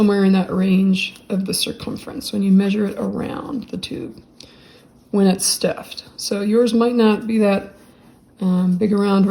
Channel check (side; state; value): both; identical; correlation 1.00